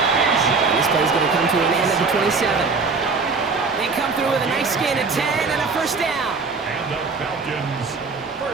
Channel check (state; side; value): quieter; left; 4.5 dB